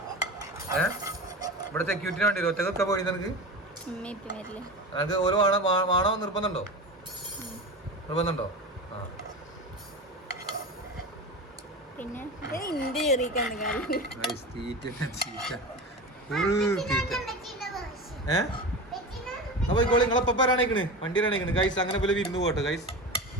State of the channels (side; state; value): both; normal; correlation 0.27